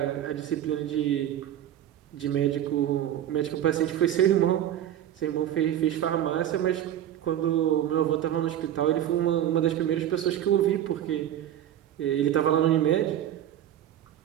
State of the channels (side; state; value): left; quieter; 11.3 dB